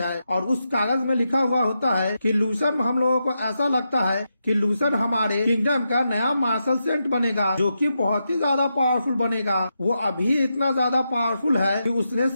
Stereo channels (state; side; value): inverted; both; correlation -0.86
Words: और उस कागज में लिखा हुआ होता है कि लूसन, हम लोगों को ऐसा लगता है कि लूसन हमारे किंगडम का नया मार्शल सेंट बनेगा जो कि बहुत ही ज्यादा पावरफुल बनेगा। वो अभी इतना ज्यादा पावरफुल है कि उसने